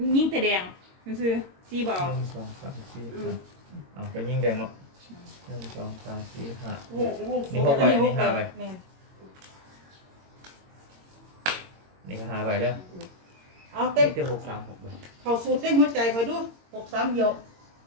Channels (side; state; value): left; late; 22 ms